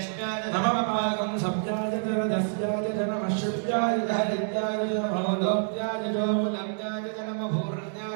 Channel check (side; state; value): left; silent; digital silence